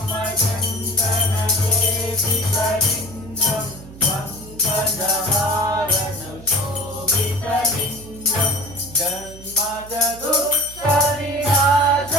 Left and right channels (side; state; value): right; noise; hum, 18 dB below the sound